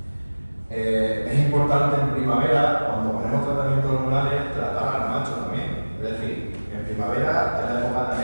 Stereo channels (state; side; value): inverted; both; correlation -1.00